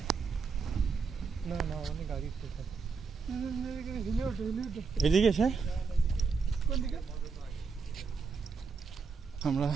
এদিকে স্যার, আমরা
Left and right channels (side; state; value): left; quieter; 5.1 dB